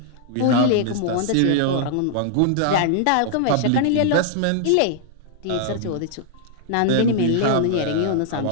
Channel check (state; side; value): different; both; correlation -0.01